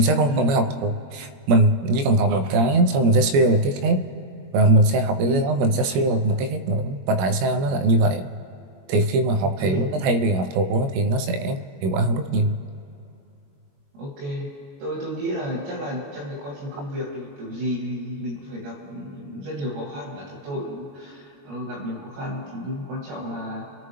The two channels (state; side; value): late; left; 21 ms